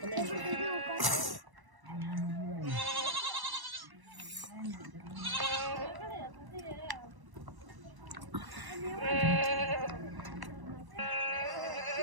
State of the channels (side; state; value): left; late; 1.0 ms